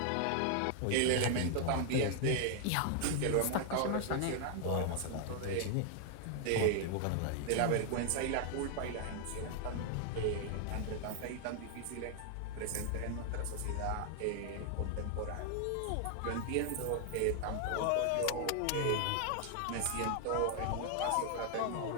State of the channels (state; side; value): different; both; correlation 0.00